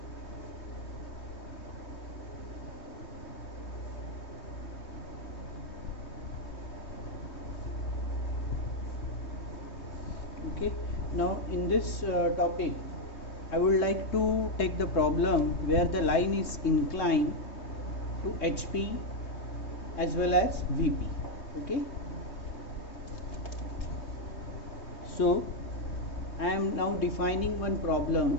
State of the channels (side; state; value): right; late; 3.2 ms